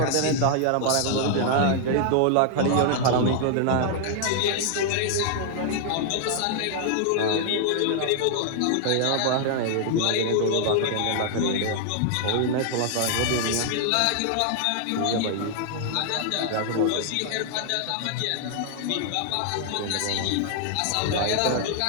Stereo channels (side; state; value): both; different; correlation 0.00